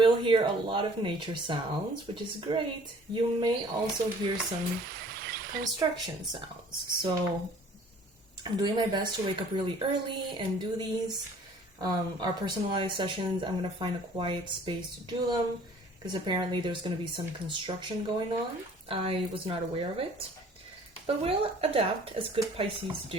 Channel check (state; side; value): normal; both; correlation 0.53